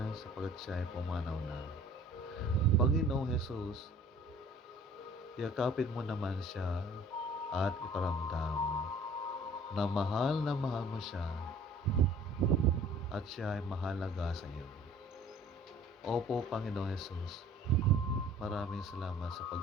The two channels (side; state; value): both; normal; correlation 0.50